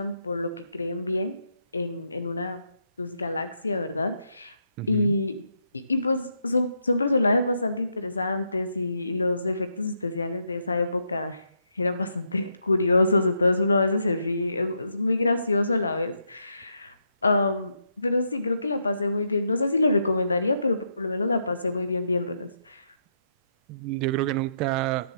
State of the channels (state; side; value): inverted; both; correlation -0.79